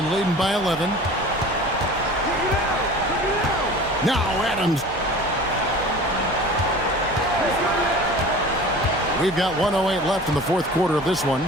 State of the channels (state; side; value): normal; both; correlation 0.40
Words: leading by 11. Now Adams. We've got 1:08 left in the fourth quarter of this one.